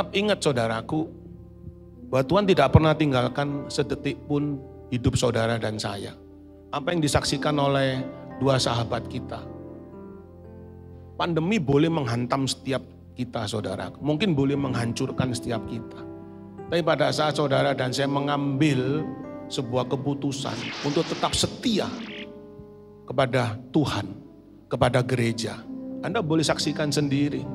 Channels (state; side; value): identical; both; correlation 1.00